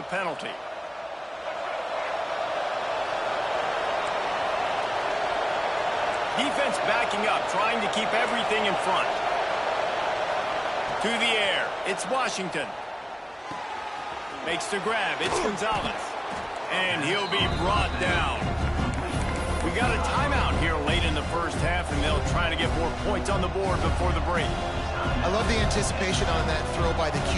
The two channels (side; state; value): both; identical; correlation 1.00